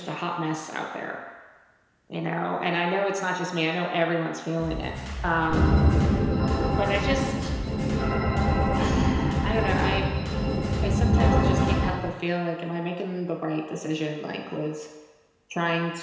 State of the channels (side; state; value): both; identical; correlation 1.00